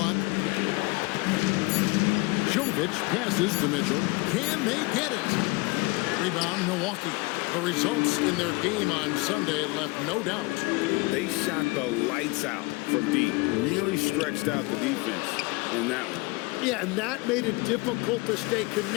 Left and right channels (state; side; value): quieter; right; 25.1 dB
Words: Jovic passes to Mitchell. Can they get it? Rebound, Milwaukee. The results in their game on Sunday left no doubt. They shot the lights out from deep. Really stretched out the defense in that one. Yeah, and that made it difficult to stay